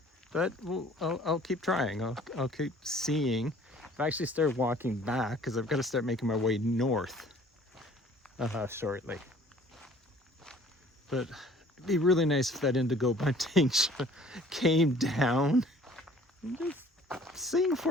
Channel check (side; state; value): both; normal; correlation 0.53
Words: But I'll keep trying. I'll keep seeing. I've actually started walking back because I've got to start making my way north shortly. But It'd be really nice if that indigo bunting came down and just sing